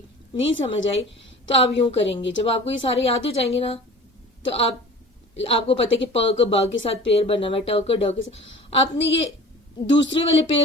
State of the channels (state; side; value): normal; both; correlation 0.42